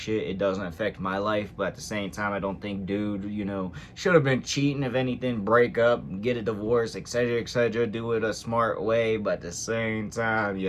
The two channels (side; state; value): both; identical; correlation 1.00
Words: It doesn't affect my life. But at the same time, I don't think dude, should have been cheating. If anything, break up, get a divorce, etc., etc. Do it a smart way. But at the same time,